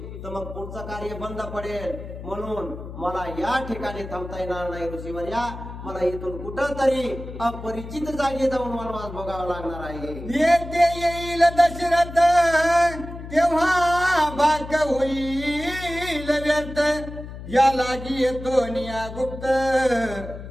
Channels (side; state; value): left; noise; hum, 11 dB below the sound